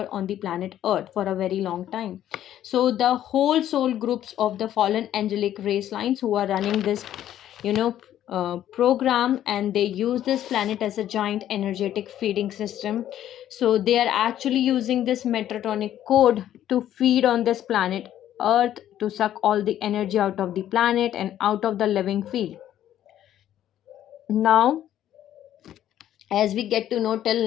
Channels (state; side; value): quieter; right; 11.7 dB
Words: on the planet Earth for a very long time. So the whole soul groups of the fallen angelic race lines who are running this, program, and they use this planet as a giant energetic feeding system. So they are actually using this Metatronic code to feed on this planet Earth, to suck all the energy out of the planet and out of the living field. Now, as we get to know